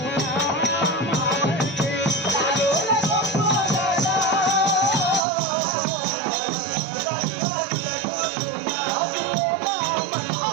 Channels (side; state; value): left; drops out; at 5.2 s